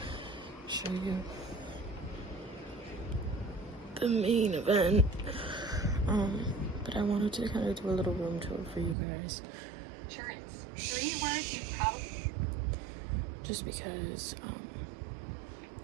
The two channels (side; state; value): left; drops out; at 9.0 s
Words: show you the main event, but I wanted to kind of do a little room tour for you guys. Insurance. 3 words you probably... Just because,